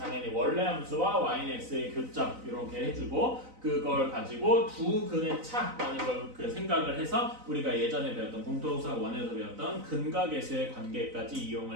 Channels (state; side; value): late; left; 4.0 ms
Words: 원래 함수와 y는 x의 교점 이렇게 해주고 그걸 가지고 두 근의 차라는 걸 그 생각을 해서 우리가 예전에 배웠던 공통수학 1에서 배웠던 근과 계수의 관계까지